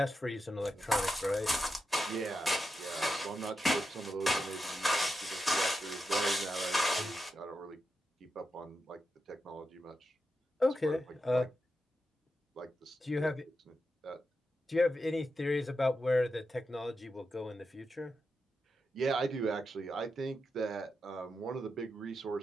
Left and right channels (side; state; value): both; normal; correlation 0.87